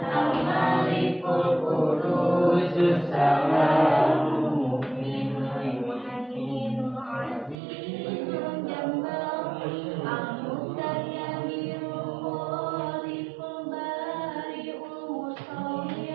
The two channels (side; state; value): left; drops out; at 7.6 s